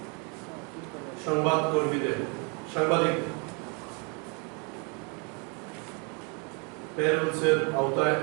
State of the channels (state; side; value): quieter; left; 34.2 dB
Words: সাংবাদিক প্যারোলসের আওতায়